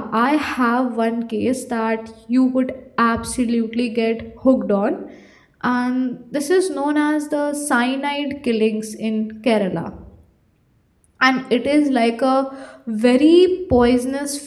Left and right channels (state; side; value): identical; both; correlation 1.00